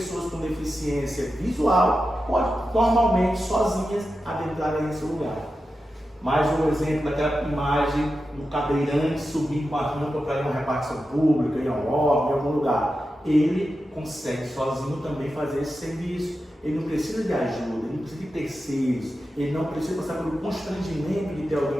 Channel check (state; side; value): normal; both; correlation 0.91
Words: com deficiência visual podem normalmente sozinhas adentrarem nesse lugar. Mais um exemplo daquela imagem do cadeirante subindo com a rampa para ir a uma repartição pública, ir a um órgão, em algum lugar. Ele consegue sozinho também fazer esse serviço. Ele não precisa de ajuda, ele não precisa de terceiros, ele não precisa passar pelo constrangimento de ter alguém